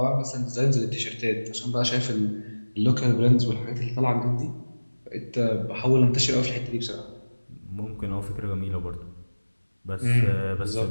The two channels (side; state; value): both; inverted; correlation -1.00